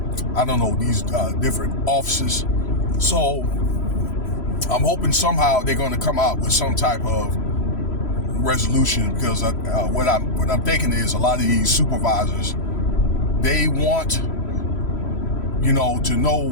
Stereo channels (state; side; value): late; right; 3.0 ms